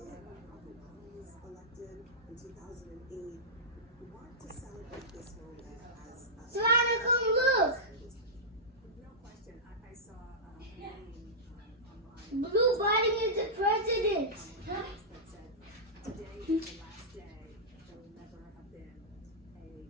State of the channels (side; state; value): both; normal; correlation -0.14